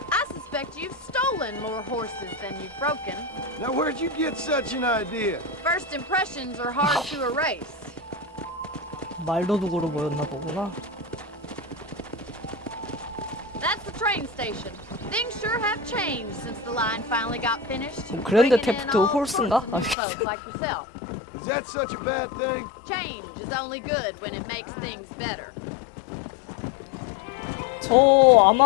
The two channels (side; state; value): right; drops out; at 20.0 s